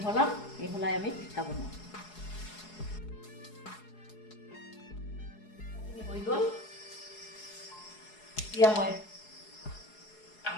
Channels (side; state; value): right; late; 4.7 ms